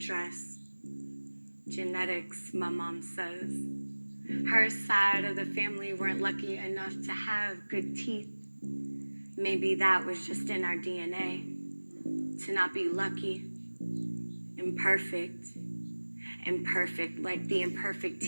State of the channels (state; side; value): inverted; both; correlation -1.00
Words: Genetics, my mom says. Her side of the family weren't lucky enough to have good teeth. Maybe that was just in our DNA, to not be lucky, imperfect like the imperfect